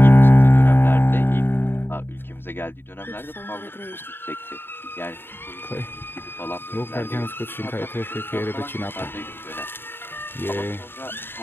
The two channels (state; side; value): late; right; 0.10 ms